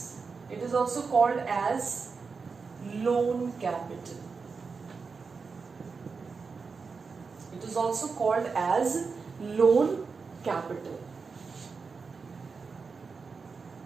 it is also called as loan capital. It is also called as loan capital.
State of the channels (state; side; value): quieter; left; 4.9 dB